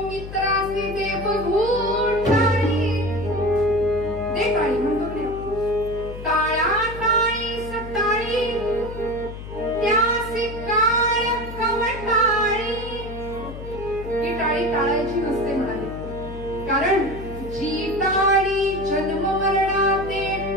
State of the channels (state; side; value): noise; left; hum, 11 dB below the sound